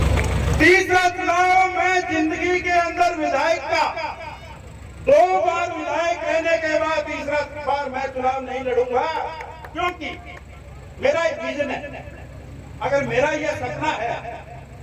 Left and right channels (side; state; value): both; identical; correlation 1.00